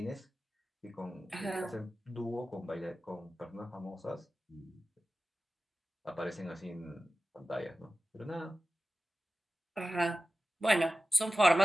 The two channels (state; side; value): normal; both; correlation 0.96